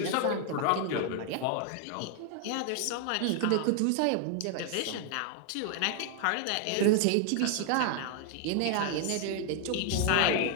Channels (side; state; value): both; different; correlation 0.00